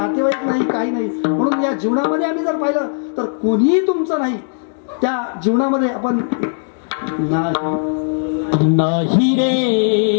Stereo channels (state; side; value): silent; right; digital silence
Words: नाही, काही नाही. म्हणून या जीवनामध्ये आम्ही जर पाहिलं तर कोणीही तुमचं नाही. त्या जीवनामध्ये आपण नाही रे